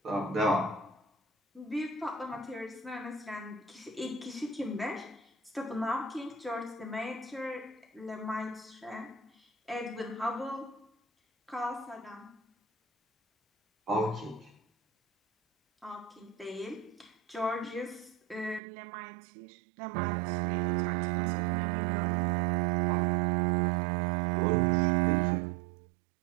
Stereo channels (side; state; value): left; drops out; at 18.6 s